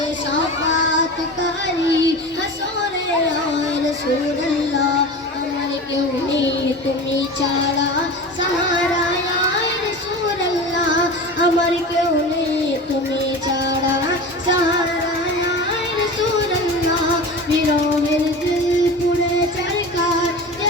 শাফাতকারী হাসরে ইয়া রাসূলুল্লাহ। আমার কেউ নেই তুমি ছাড়া সাহারা ইয়া রাসূলুল্লাহ, আমার কেউ নেই তুমি ছাড়া সাহারা ইয়া রাসূলুল্লাহ। বিরহের দিল পুড়ে চরকার যে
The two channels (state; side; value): normal; both; correlation 0.32